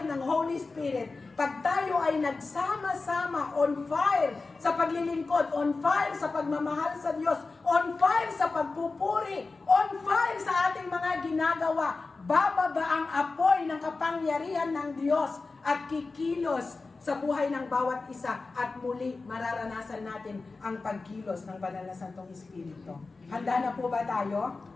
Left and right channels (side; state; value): right; quieter; 3.8 dB